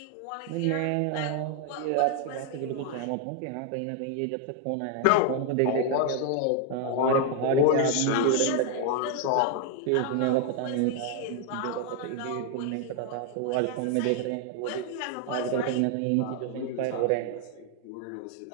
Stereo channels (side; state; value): both; different; correlation 0.00